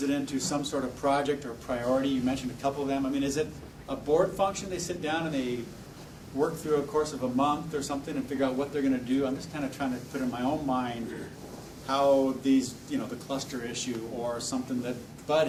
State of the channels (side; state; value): both; identical; correlation 1.00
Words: it into some sort of project or priority? You mentioned a couple of them. I mean, is it a board function? They sit down and they work through a course of a month or something and figure out what they're going to do? I'm just kind of trying to put in my own mind how these, the cluster issue or something that Bud